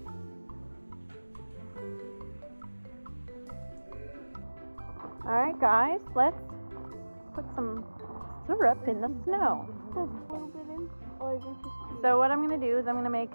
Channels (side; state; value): both; inverted; correlation -1.00